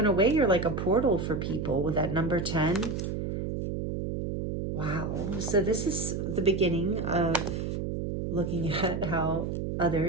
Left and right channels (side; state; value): right; noise; hum, 3 dB below the sound